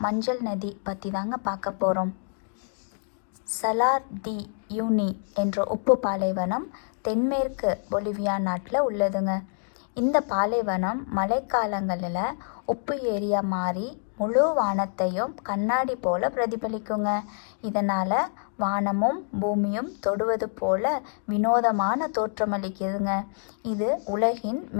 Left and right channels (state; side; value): silent; right; digital silence